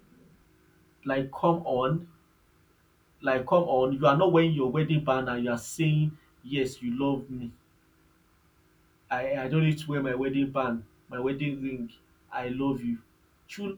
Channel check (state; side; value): identical; both; correlation 1.00